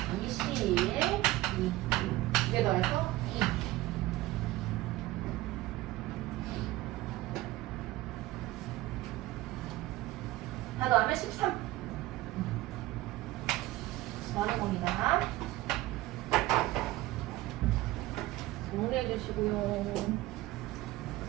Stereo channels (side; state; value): left; quieter; 17.3 dB